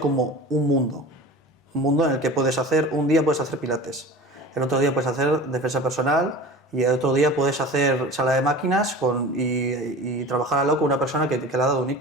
como un mundo en el que puedes hacer, un día puedes hacer pilates, el otro día puedes hacer defensa personal y el otro día puedes hacer sala de máquinas y trabajar al lado con una persona que le ha dado un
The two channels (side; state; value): both; normal; correlation 0.37